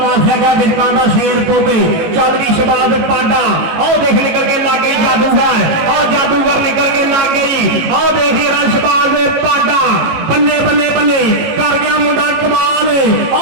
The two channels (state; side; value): late; left; 18 ms